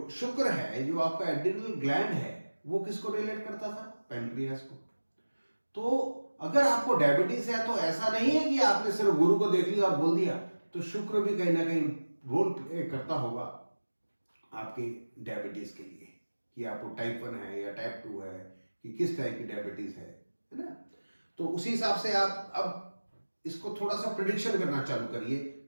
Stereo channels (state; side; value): inverted; both; correlation -1.00